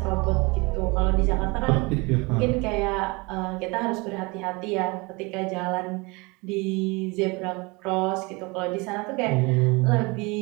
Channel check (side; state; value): left; quieter; 26.6 dB